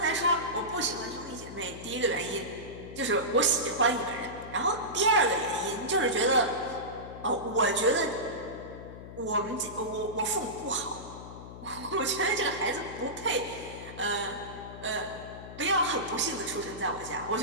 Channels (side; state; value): left; noise; hum, 13 dB below the sound